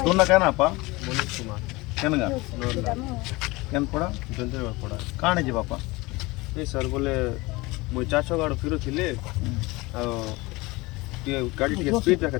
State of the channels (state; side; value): quieter; right; 22.5 dB